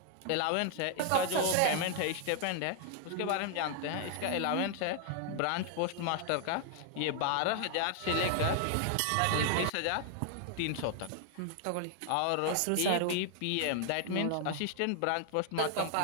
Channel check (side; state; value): both; different; correlation 0.00